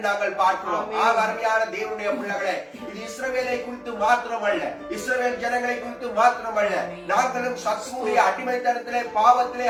நாங்கள் பார்க்கிறோம். அருமையான தேவனுடைய பிள்ளைகளை, இது இஸ்ரவேலை குறித்து மாத்திரமல்ல, இஸ்ரவேல் ஜனங்களை குறித்து மாத்திரமல்ல, நாங்களும் சத்ருவுடைய அடிமைத்தனத்திலே பாவத்திலே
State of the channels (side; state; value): both; identical; correlation 1.00